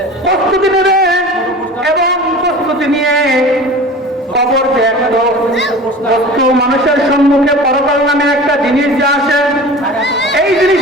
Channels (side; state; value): both; normal; correlation 0.38